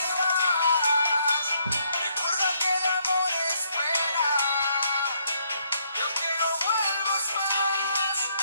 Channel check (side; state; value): both; inverted; correlation -0.72